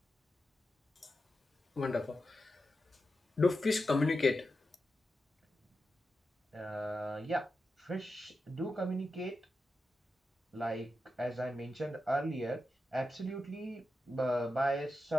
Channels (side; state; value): both; normal; correlation 0.89